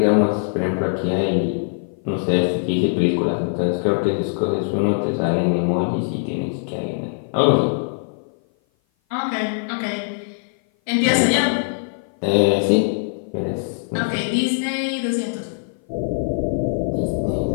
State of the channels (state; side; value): silent; right; 56 dB below the other